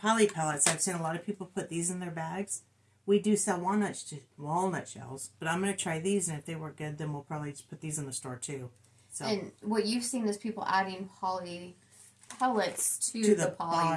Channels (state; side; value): identical; both; correlation 1.00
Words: Poly pellets. I've seen a lot of people put these in their bags. We do sell walnut shells, but I'm going to try these, and if they work good, then we'll probably just put these in the store too. So. And what you've seen is people adding poly pellets to the